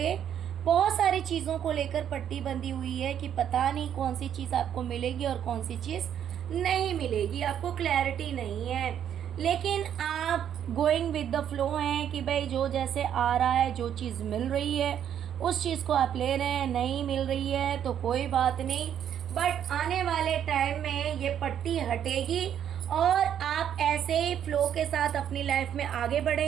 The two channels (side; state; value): left; quieter; 9.5 dB